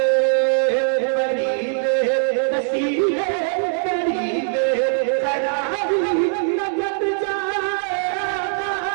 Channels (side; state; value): left; silent; digital silence